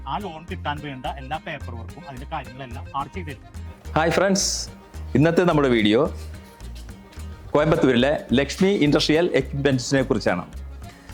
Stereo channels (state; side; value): identical; both; correlation 1.00